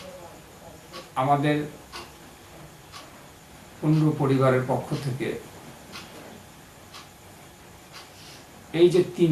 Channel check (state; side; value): identical; both; correlation 1.00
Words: আমাদের কুণ্ডু পরিবারের পক্ষ থেকে এই যে